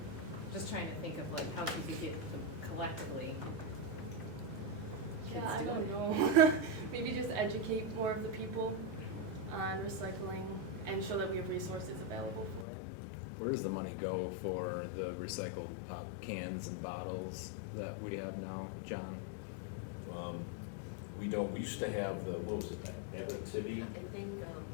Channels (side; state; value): right; drops out; at 12.7 s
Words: Just trying to think of like how could you get them collectively? Yeah, kids I do don't it? know. Maybe just educate more of the people on recycling and show that we have resources available for it. Where does the money go for the recycled cans and bottles that we have now, John? We don't, we used to have the, what was it, that Abitibi? I think,